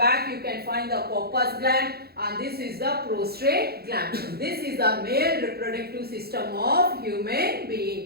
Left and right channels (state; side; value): late; left; 0.46 ms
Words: you can find the corpus gland, and this is the prostate gland. This is the male reproductive system of human